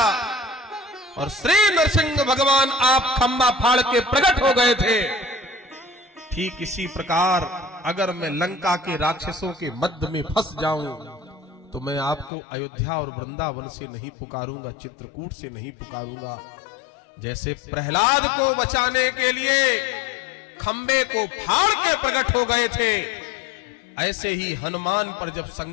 और श्री नरसिंह भगवान आप खंबा फाड़ के प्रकट हो गए थे, ठीक इसी प्रकार अगर मैं लंका के राक्षसों के मध्य में फंस जाऊं तो मैं आपको अयोध्या और वृंदावन से नहीं पुकारूंगा, चित्रकूट से नहीं पुकारूंगा। जैसे प्रहलाद को बचाने के लिए खंबे को फाड़ के प्रकट हो गए थे, ऐसे ही हनुमान पर जब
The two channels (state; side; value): drops out; right; at 12.3 s